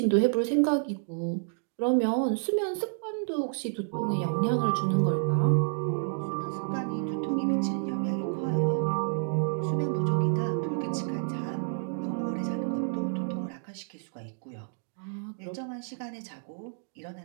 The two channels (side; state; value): left; silent; digital silence